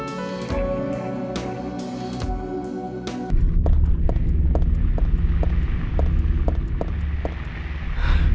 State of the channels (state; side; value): identical; both; correlation 1.00